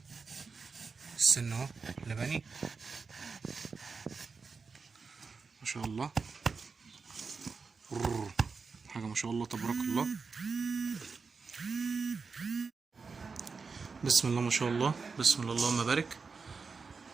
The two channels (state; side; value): quieter; left; 4.8 dB